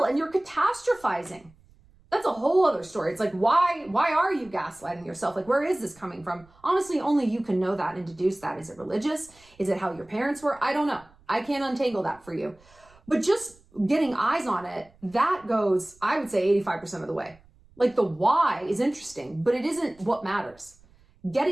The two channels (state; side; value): noise; right; rumble, 29 dB below the sound